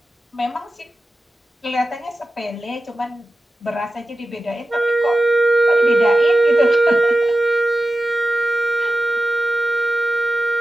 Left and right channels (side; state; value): both; normal; correlation 0.93